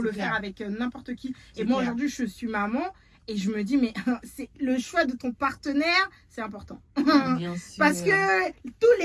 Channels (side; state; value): both; identical; correlation 1.00